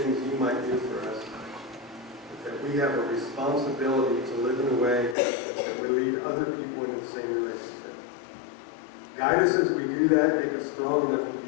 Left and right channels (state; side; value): drops out; right; at 5.2 s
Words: you might do for us. But that we have a responsibility to live in a way that will lead other people into the same relationship. Guide us as we do that, make us strong enough